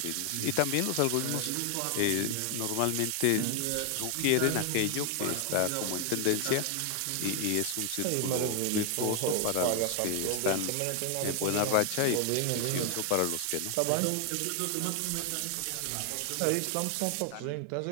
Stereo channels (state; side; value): different; both; correlation 0.00